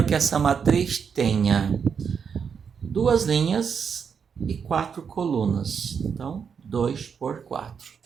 que essa matriz tenha 2 linhas e 4 colunas. Então, 2 por 4.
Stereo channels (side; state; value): left; quieter; 6.7 dB